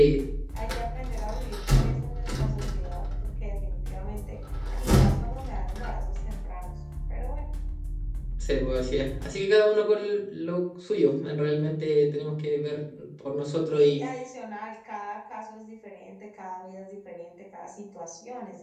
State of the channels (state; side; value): identical; both; correlation 1.00